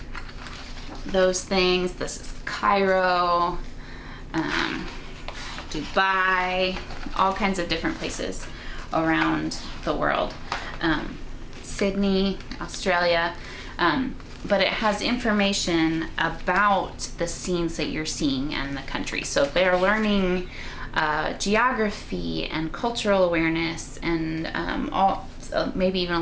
those things. This is Cairo, Dubai, all kinds of different places around the world. Sydney, Australia, but it has information about the scenes that you're seeing and the country. So they're learning geography and cultural awareness and maybe even a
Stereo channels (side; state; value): both; identical; correlation 1.00